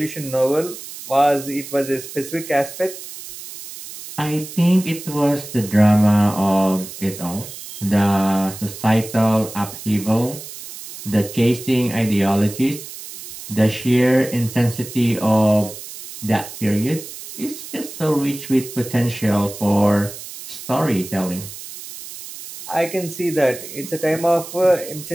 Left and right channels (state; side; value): noise; right; hiss, 13 dB below the sound